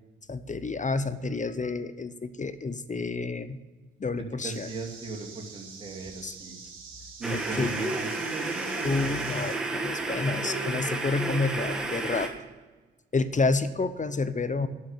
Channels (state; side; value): normal; both; correlation 0.60